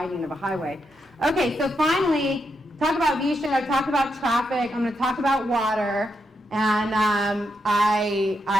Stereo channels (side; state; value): both; normal; correlation 0.83